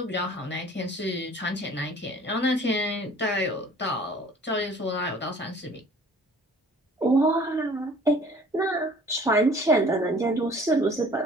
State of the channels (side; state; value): both; normal; correlation 0.51